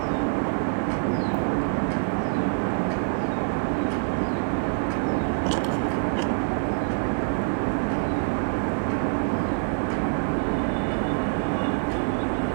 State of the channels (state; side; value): silent; left; 61 dB below the other